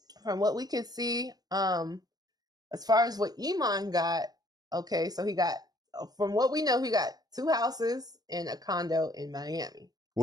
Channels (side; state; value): left; late; 0.19 ms